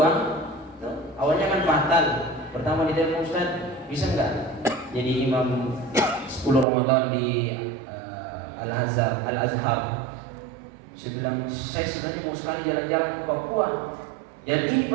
awalnya kan batal. Pertama ditelepon, Ustaz, bisa nggak jadi imam 10 Ramadan di Al-Azhar? Saya bilang, saya sebenarnya mau sekali jalan-jalan ke Papua. Dan ini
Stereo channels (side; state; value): left; drops out; at 6.7 s